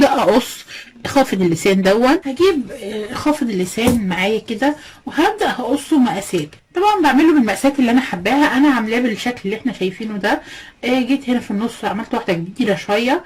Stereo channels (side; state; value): both; identical; correlation 1.00